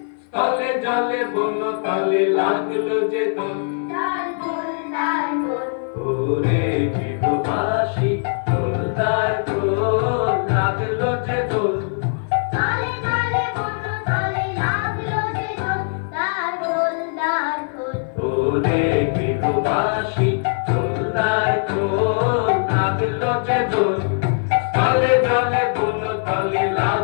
তলে জলে বন্য তলে লাগলো যে দোল, ওরে গৃহবাসী দোলদার দোল লাগলো যে দোল, ওরে গৃহবাসী দোলদার দোল লাগলো যে দোল, তলে জলে বন্য তলে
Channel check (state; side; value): silent; right; 57 dB below the other